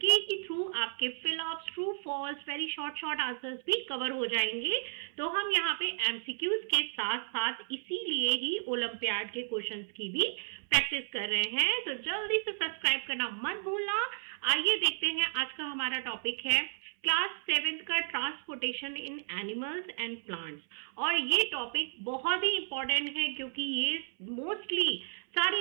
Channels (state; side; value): silent; left; 56 dB below the other